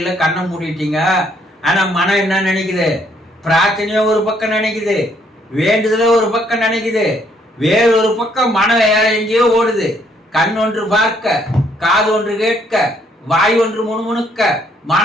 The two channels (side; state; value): both; normal; correlation 0.68